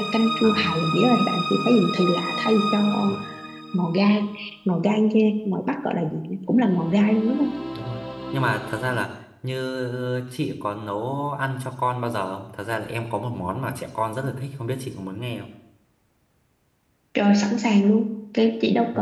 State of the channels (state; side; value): identical; both; correlation 1.00